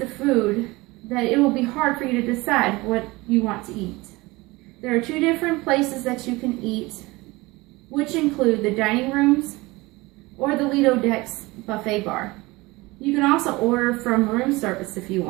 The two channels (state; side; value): quieter; left; 22.0 dB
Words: food that it will be hard for you to decide what you want to eat. There are 2 different places that you can eat, which include the dining rooms or the Lido Decks buffet bar. You can also order from room service if you